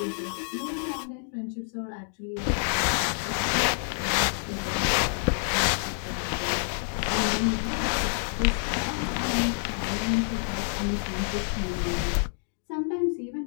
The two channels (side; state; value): right; silent; digital silence